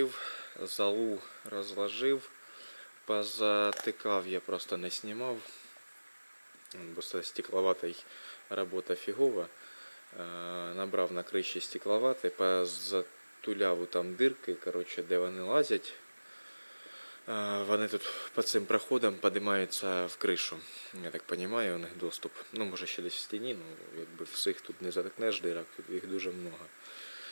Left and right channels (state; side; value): inverted; both; correlation -1.00